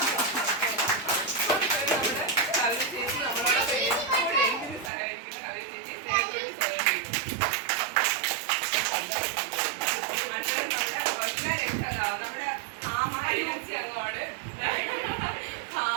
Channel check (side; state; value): left; drops out; at 4.9 s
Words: കവിത ചേച്ചി നമ്മളോടൊപ്പം എപ്പോഴും എന്തിനും സഹകരിക്കുന്ന കവിത ചേച്ചി സ്നേഹത്തോടുകൂടി സ്വാഗതം ചെയ്തു. അടുത്തത് നമ്മുടെ ആമ ALMC അംഗമാണ്